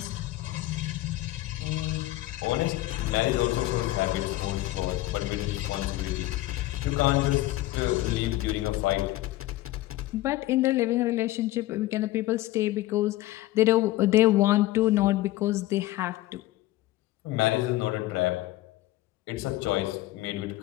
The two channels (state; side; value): quieter; right; 17.0 dB